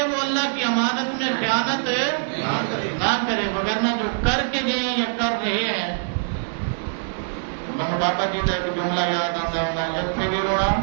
وہ اللہ کی امانت میں خیانت نہ کرے. وگرنہ جو کر کے گئے یا کر رہے ہیں, بابا جی کا ایک جملہ یاد آتا ہے, اتنے بھی رونا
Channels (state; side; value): silent; left; digital silence